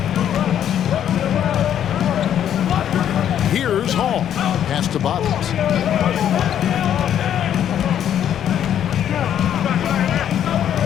Here's Hall. Pass to Bottoms.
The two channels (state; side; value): quieter; right; 10.0 dB